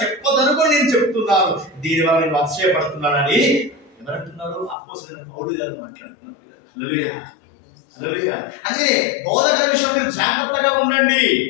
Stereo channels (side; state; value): right; drops out; at 4.8 s